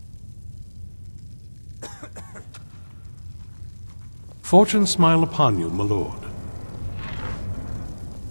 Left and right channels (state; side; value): inverted; both; correlation -1.00